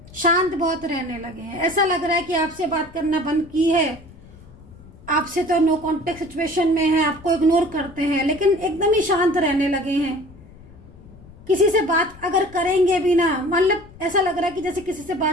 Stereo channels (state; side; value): noise; left; rumble, 21 dB below the sound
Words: शांत बहुत रहने लगे हैं। ऐसा लग रहा है कि आपसे बात करना बंद की है, आपसे तो नो कांटेक्ट सिचुएशन में है, आपको इग्नोर करते हैं, लेकिन एकदम ही शांत रहने लगे हैं। किसी से बात अगर करेंगे भी ना, मतलब ऐसा लग रहा है कि जैसे किसी से